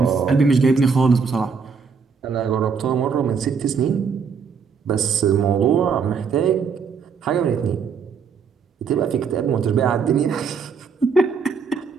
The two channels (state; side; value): quieter; left; 5.8 dB